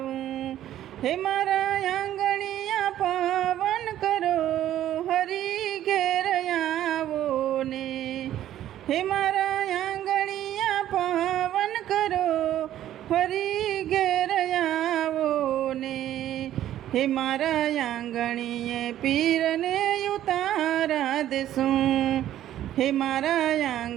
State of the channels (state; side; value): quieter; left; 12.3 dB